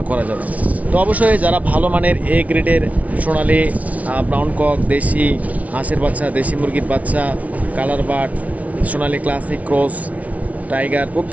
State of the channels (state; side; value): late; left; 0.069 ms